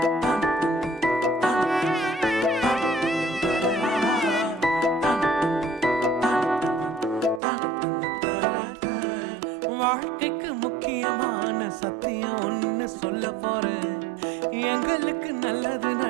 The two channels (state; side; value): drops out; left; at 7.4 s